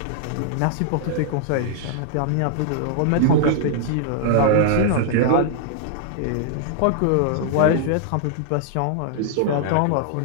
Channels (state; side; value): different; both; correlation -0.01